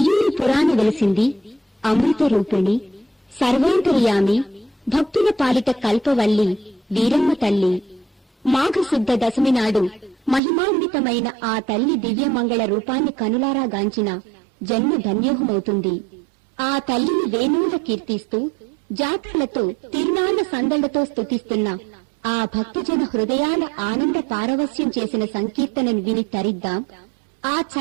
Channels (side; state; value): left; drops out; at 10.4 s